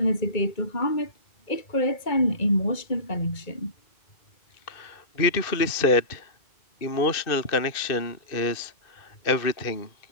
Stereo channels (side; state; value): right; late; 2.5 ms